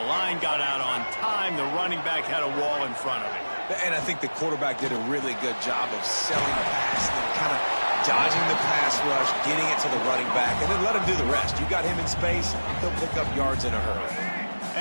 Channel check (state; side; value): inverted; both; correlation -1.00